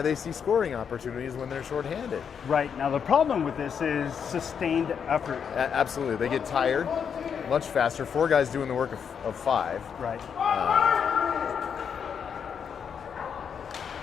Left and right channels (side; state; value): right; quieter; 7.2 dB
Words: see scoring opportunities when they're shorthanded. Right. Now the problem with this is sustained effort. Absolutely. They get tired much faster. 4 guys doing the work of 5. Right.